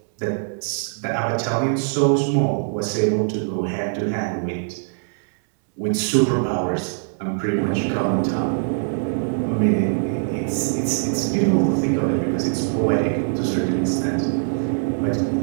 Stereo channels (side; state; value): left; silent; digital silence